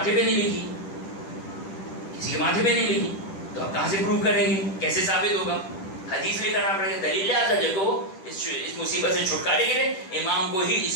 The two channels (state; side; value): late; right; 10 ms